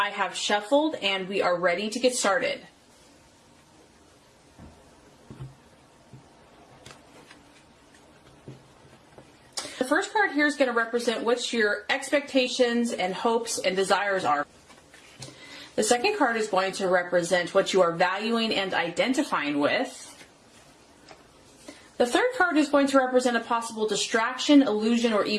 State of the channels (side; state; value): both; identical; correlation 1.00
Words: have shuffled and we are ready to get started. The first card here is going to represent what your expectations and hopes and desires are. The second card is going to represent what you are valuing and identifying with. The third card is going to represent a possible distraction, illusion, or